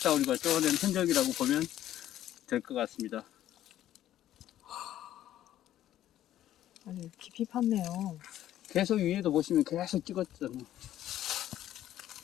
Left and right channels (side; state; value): right; quieter; 12.5 dB